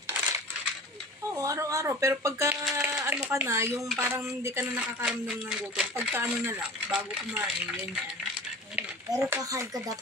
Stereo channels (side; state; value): both; normal; correlation 0.39